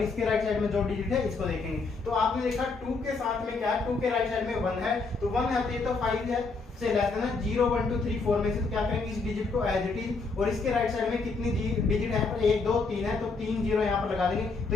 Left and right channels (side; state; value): right; quieter; 4.1 dB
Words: इसके राइट साइड में जो डिजिट है इसको देखेंगे। तो आपने देखा 2 के साथ में क्या है 2 के राइट साइड में 1 है तो 1 है तो 5 है से लेस है ना 0 1 2 3 4 में से तो क्या करेंगे इस डिजिट को एज इट इज और इसके राइट साइड में कितनी डिजिट है पर 1 2 3 है तो 3 0 यहाँ पर लगा देंगे। तो